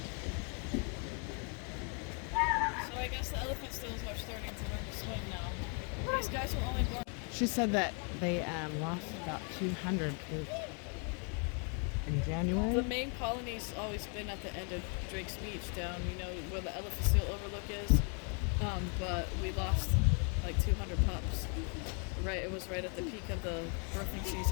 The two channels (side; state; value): right; quieter; 37.4 dB